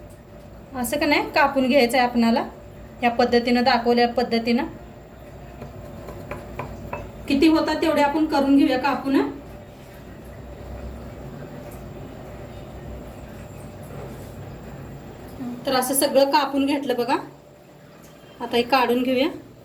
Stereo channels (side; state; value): both; identical; correlation 1.00